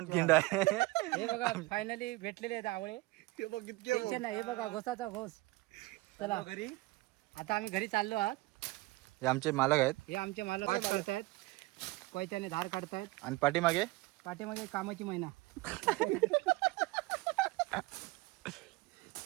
खिंड आहे. हे बघा फायनली भेटलेले आहेत आवळे. टेन्शन नाही. हे बघा घोसाचा घोस. चला घरी. आता आम्ही घरी चाललो आहात. हे आमचे मालक आहेत. हे आमचे मालक काढतायत कोयत्याने धार काढतायत. आणि पाठीमागे पाठीमागे कामाची महिना.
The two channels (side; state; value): left; quieter; 21.0 dB